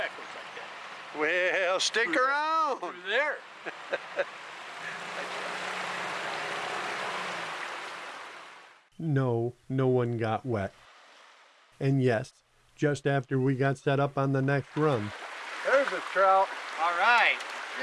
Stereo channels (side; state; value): both; identical; correlation 1.00